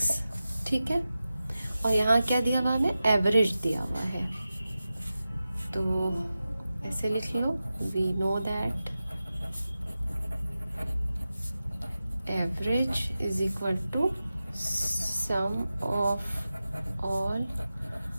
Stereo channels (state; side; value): inverted; both; correlation -0.93